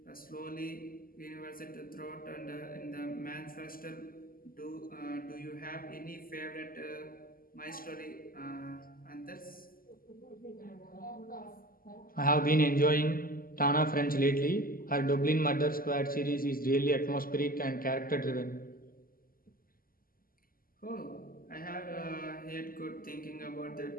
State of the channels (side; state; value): right; late; 0.42 ms